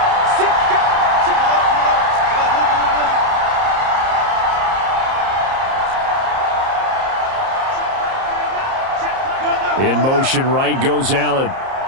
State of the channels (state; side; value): late; left; 30 ms